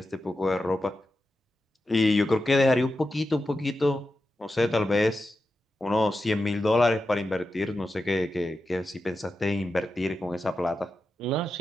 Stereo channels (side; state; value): both; normal; correlation 0.90